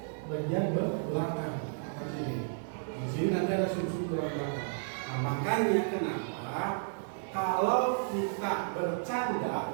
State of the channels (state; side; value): silent; left; digital silence